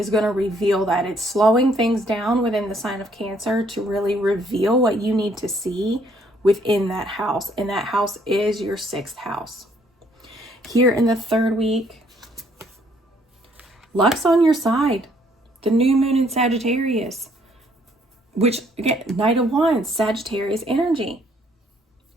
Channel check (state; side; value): normal; both; correlation 0.66